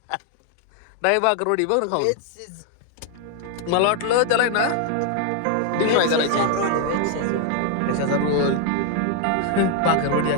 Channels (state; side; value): different; both; correlation 0.00